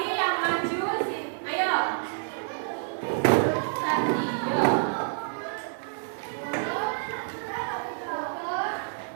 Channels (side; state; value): left; silent; digital silence